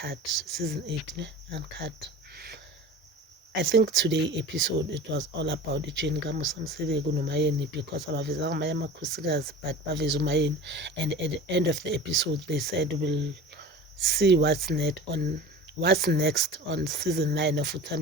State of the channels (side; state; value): both; normal; correlation 0.36